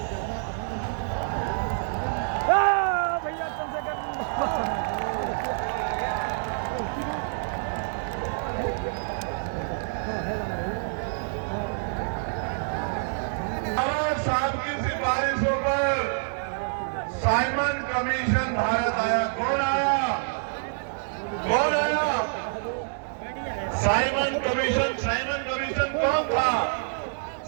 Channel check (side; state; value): left; silent; digital silence